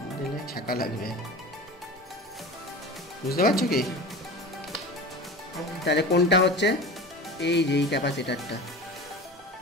দিলে ছাকা লাগবে, বুঝতে পারছো কি? তাহলে কোনটা হচ্ছে? এই যে এই ক্যাপাসিটারটা,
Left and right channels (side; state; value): both; normal; correlation 0.33